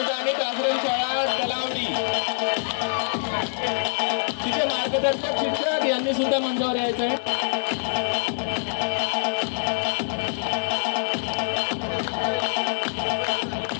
आश्रमशाळा तलावडी. तिचे मार्गदर्शक शिक्षक यांनी सुद्धा मंचावर यायचं आहे.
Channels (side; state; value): right; silent; digital silence